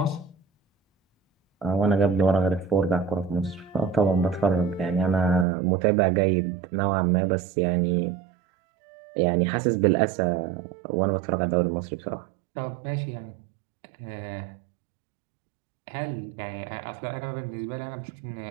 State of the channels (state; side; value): drops out; left; at 5.5 s